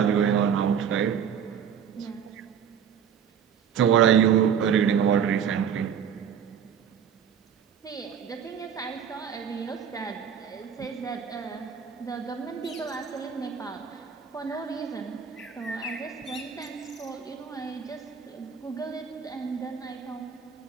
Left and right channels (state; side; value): quieter; left; 7.9 dB